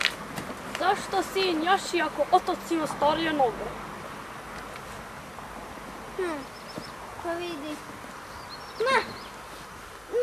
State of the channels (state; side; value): noise; left; hum, 27 dB below the sound